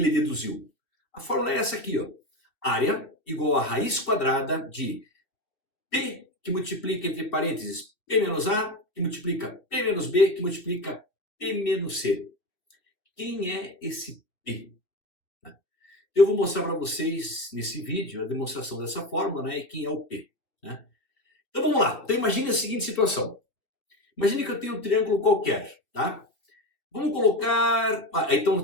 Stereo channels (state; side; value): late; right; 2.4 ms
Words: deduziu? A fórmula é essa aqui, ó. Área igual a raiz quadrada de P, que multiplica entre parênteses P menos A, que multiplica P menos B, que multiplica P menos C. Quem é esse P? Eu vou mostrar para vocês nesse vídeo a demonstração dessa fórmula, né, e quem é o P, né? Então vamos lá. Então imagine a seguinte situação. Imagine que eu tenho um triângulo qualquer, tá? Vamos colocar, então